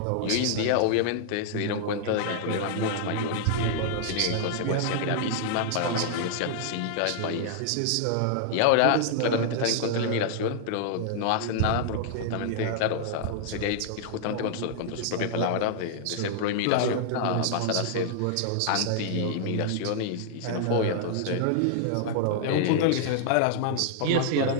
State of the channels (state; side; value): different; both; correlation -0.01